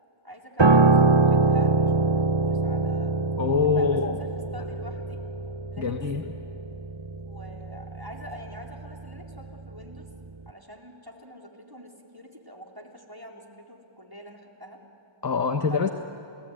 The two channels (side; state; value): left; late; 1.1 ms